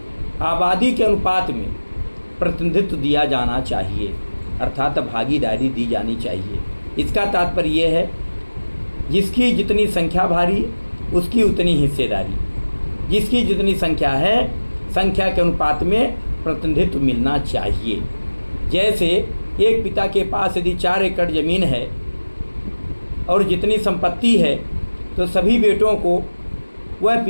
आबादी के अनुपात में प्रतिनिधित्व दिया जाना चाहिए, अर्थात भागीदारी दी जानी चाहिए। इसका तात्पर्य ये है, जिसकी जितनी संख्या भारी उसकी उतनी हिस्सेदारी, जिसकी जितनी संख्या है संख्या के अनुपात में प्रतिनिधित्व मिलना चाहिए। जैसे एक पिता के पास यदि 4 एकड़ ज़मीन है और जितनी संपत्ति है, तो सभी बेटों को वह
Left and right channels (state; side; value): inverted; both; correlation -1.00